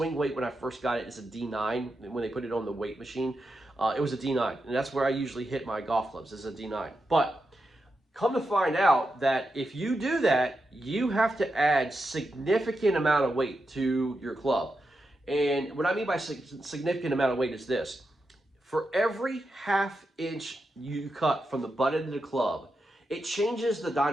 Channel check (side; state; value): both; normal; correlation 0.87